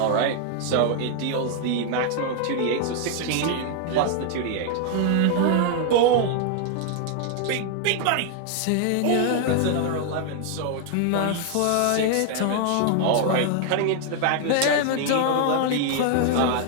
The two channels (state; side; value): different; both; correlation 0.00